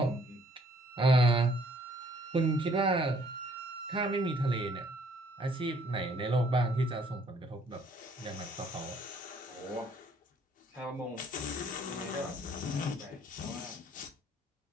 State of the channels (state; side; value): normal; both; correlation 0.62